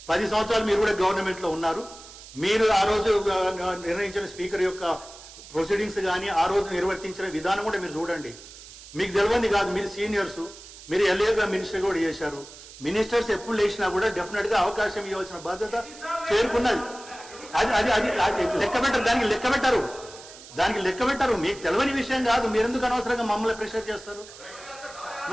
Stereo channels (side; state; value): right; noise; hiss, 17 dB below the sound